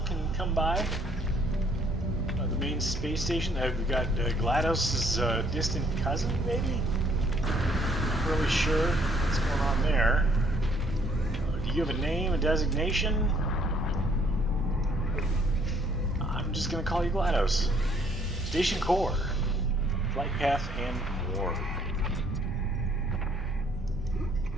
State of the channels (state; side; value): normal; both; correlation 0.64